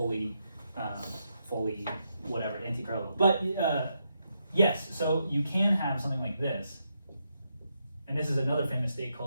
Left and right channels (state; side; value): inverted; both; correlation -0.81